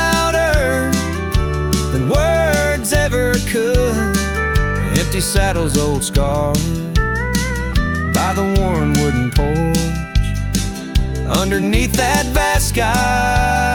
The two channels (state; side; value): identical; both; correlation 1.00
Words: than words ever could. Empty saddles, old scars by the worn wooden porch, underneath that vast